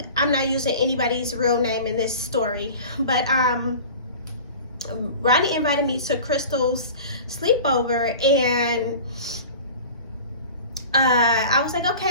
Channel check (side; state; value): both; inverted; correlation -0.38